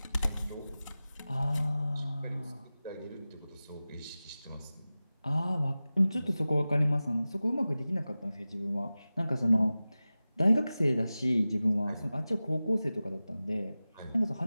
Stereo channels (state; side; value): inverted; both; correlation -0.96